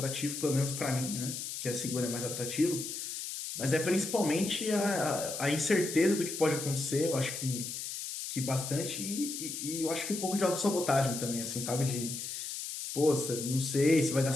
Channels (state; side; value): noise; left; hiss, 6 dB below the sound